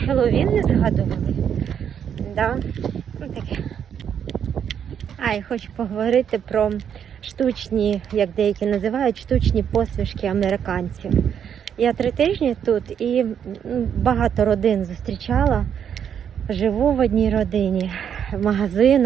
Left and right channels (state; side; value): quieter; left; 8.4 dB